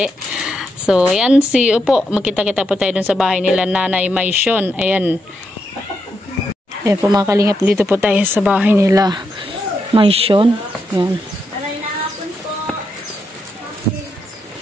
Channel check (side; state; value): both; normal; correlation 0.82